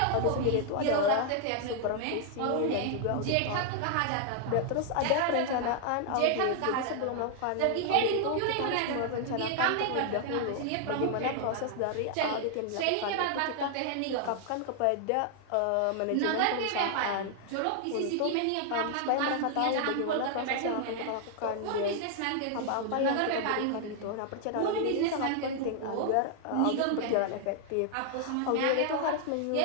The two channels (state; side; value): different; both; correlation 0.00